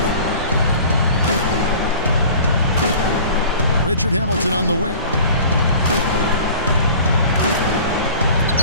Richard Hamilton on the wing.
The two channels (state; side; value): inverted; both; correlation -0.44